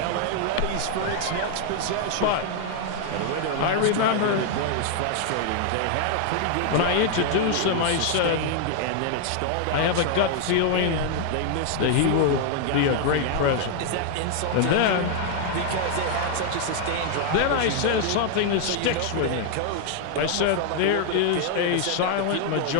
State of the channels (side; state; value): both; different; correlation 0.00